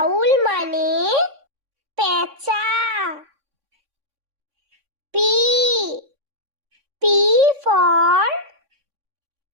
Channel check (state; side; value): late; left; 3.6 ms